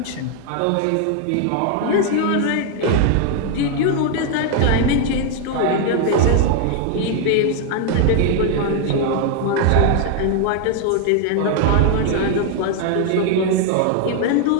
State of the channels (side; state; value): both; different; correlation 0.00